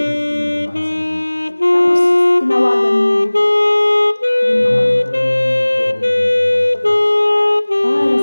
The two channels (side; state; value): both; inverted; correlation -1.00